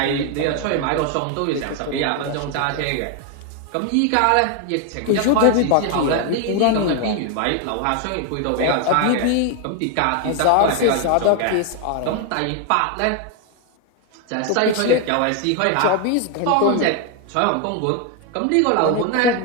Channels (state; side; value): different; both; correlation 0.01